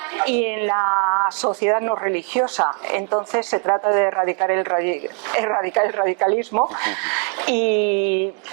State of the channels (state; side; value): quieter; left; 39.6 dB